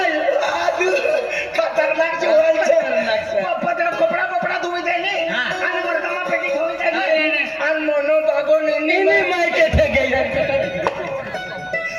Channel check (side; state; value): both; identical; correlation 1.00